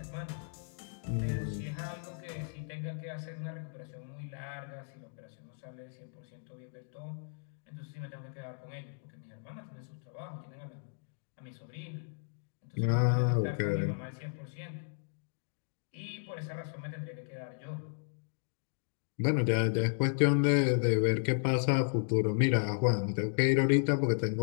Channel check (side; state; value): right; silent; digital silence